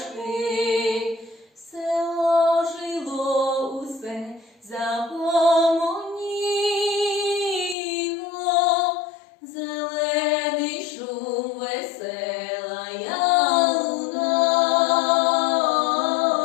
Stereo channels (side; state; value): right; drops out; at 7.8 s